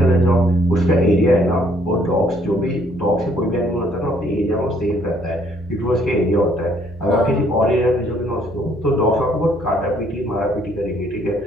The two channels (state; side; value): normal; both; correlation 0.65